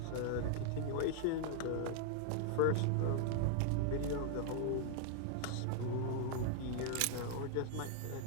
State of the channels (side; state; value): both; different; correlation -0.01